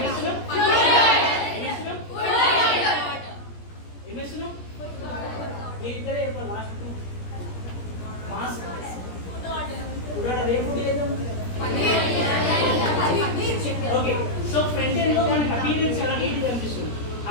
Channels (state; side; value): late; right; 17 ms